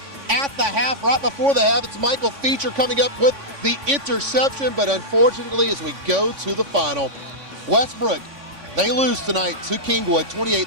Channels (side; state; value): left; late; 3.5 ms